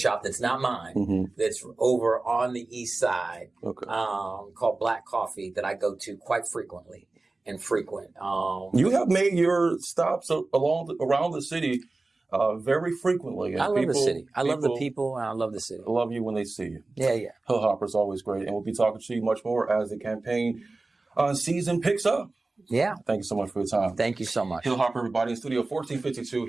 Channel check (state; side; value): quieter; left; 3.3 dB